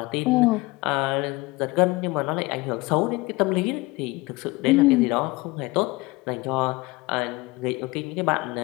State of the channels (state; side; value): quieter; right; 23.1 dB